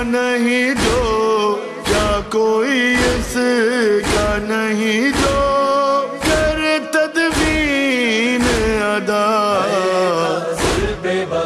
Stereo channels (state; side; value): identical; both; correlation 1.00